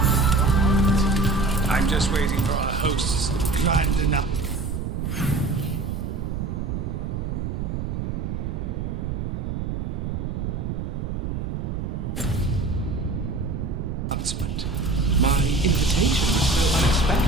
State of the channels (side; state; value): right; noise; rumble, 3 dB below the sound